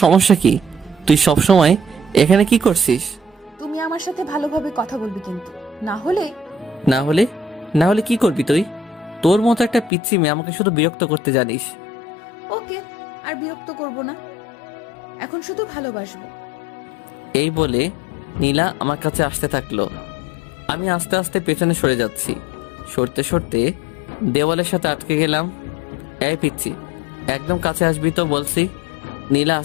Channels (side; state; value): right; drops out; at 9.9 s